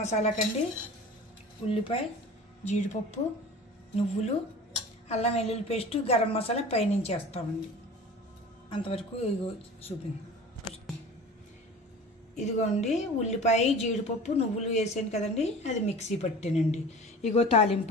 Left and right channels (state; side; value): normal; both; correlation 0.39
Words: మసాలా కండి, ఉల్లిపాయ, జీడిపప్పు, నువ్వులు, అల్లం వెల్లుల్లి పేస్టు, గరం మసాలా పైనుంచి వేస్తామండి. అంతవరకు ఇగో చూపించాను. ఇదిగోండి ఉల్లిపాయ, జీడిపప్పు, నువ్వులు వేసాను కదండి, అది మిక్సీ పట్టానండి. ఇగో